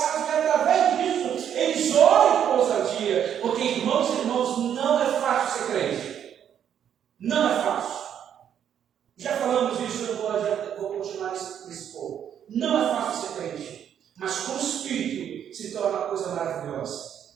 dia. Porque, irmãos e irmãos, não é fácil ser crente. Não é fácil. Já falamos isso, eu vou continuar nesse ponto. Não é fácil ser crente. Mas com o Espírito se torna uma coisa maravilhosa.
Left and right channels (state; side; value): quieter; left; 9.2 dB